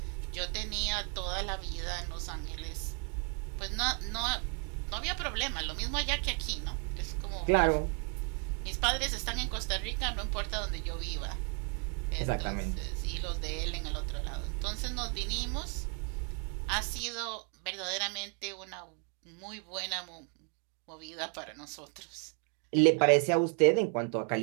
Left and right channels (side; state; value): left; quieter; 38.4 dB